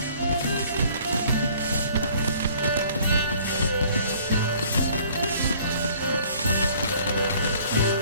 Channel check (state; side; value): inverted; both; correlation -0.55